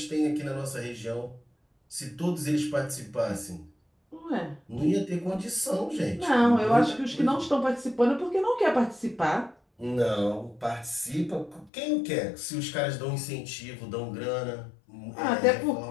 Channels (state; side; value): drops out; right; at 11.7 s